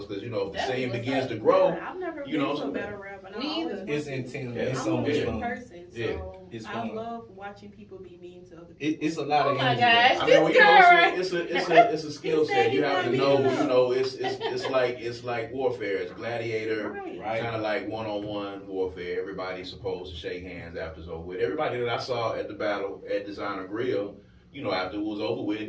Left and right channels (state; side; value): identical; both; correlation 1.00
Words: Because, if the scene begins to grow, I've never you know been to a battle rap. And Me either. It's intense. Yeah, It's so much in fun. person. Yeah. So It's I fun. love watching people be mean to other people. It's a lot of Oh my energy. gosh. I mean, This you girl. know, it's a skill He said set. You he's have not to beating know, up. you know, it's like warfare. It's gladiator, Right. Right. kind of like one-on-one warfare. Everybody's supposed to shake hands after it's over with. Everybody that I saw at the battle at Designer Grill, you know, after it was over